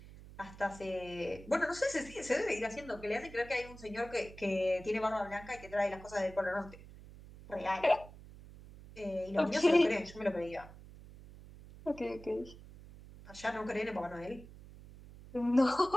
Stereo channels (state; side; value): noise; right; hum, 17 dB below the sound